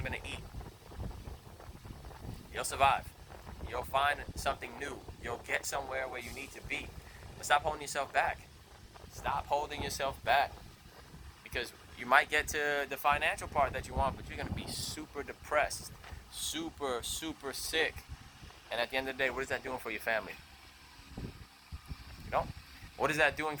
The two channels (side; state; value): both; identical; correlation 1.00